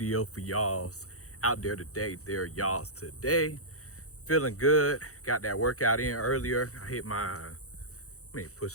for y'all's out there today. Y'all's today. Feeling good. Got that workout in earlier. I hit how many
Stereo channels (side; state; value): right; late; 0.65 ms